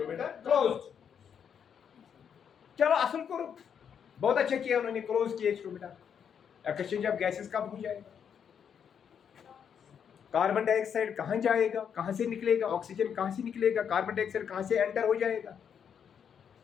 क्लोज। चलो असल कोर, बहुत अच्छा किया उन्होंने, क्लोज किया स्टोमेटा। एक्सचेंज ऑफ गैसेस कब हो जाएगा, कार्बन डाइऑक्साइड कहाँ जाएगा, कहाँ से निकलेगा, ऑक्सीजन कहाँ से निकलेगा, कार्बन डाइऑक्साइड कहाँ से एंटर हो जाएगा।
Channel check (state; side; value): quieter; right; 7.8 dB